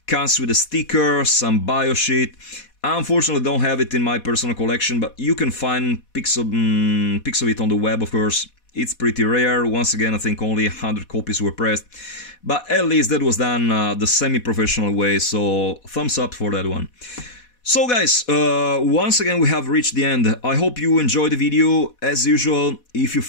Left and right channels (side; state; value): right; late; 4.1 ms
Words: comes with a sticker, some bio sheet. I unfortunately don't have it in my personal collection, but you can find pics of it on the web, of course. It's pretty rare. Once again, I think only 100 copies were pressed. But at least that was done the semi-professional way, so thumbs up for that one. So guys, once again we have reached the end. I hope you enjoyed the video. As usual, if you